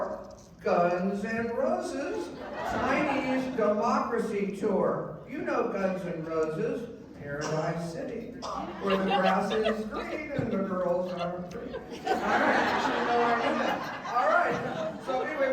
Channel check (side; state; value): both; identical; correlation 1.00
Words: Guns N' Roses' Chinese Democracy Tour. You know Guns N' Roses, Paradise City, where the grass is green and the girls are free. All right, all right. So